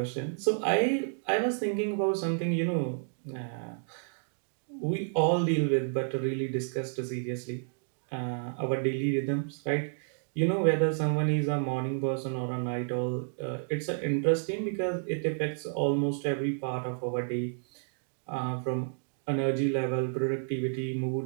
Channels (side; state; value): left; silent; digital silence